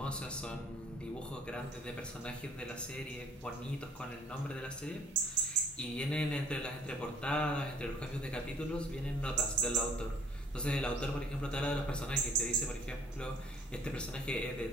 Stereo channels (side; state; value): both; normal; correlation 0.56